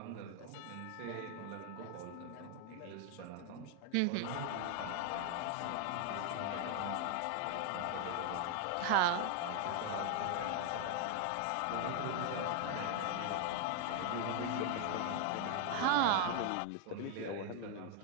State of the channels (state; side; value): different; both; correlation 0.00